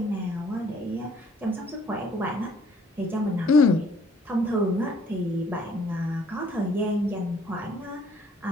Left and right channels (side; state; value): both; normal; correlation 0.60